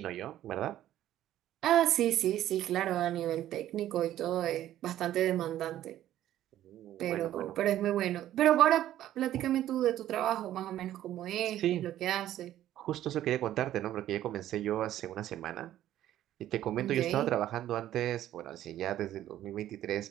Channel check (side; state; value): left; quieter; 12.7 dB